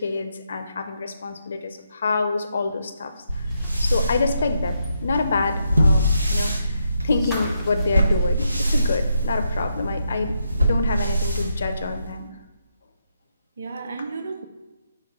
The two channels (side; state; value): both; inverted; correlation -0.80